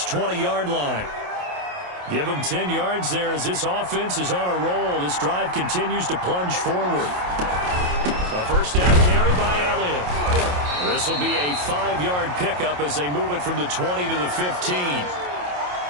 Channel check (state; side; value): late; left; 28 ms